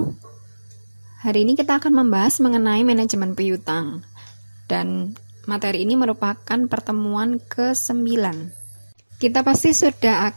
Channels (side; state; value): both; inverted; correlation -1.00